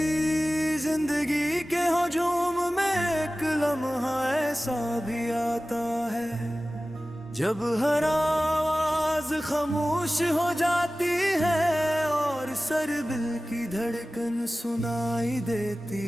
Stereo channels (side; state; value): both; normal; correlation 0.96